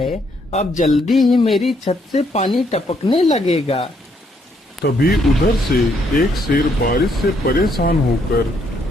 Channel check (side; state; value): both; normal; correlation 0.72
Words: अब जल्दी ही मेरी छत से पानी टपकने लगेगा। तभी उधर से एक शेर बारिश से परेशान होकर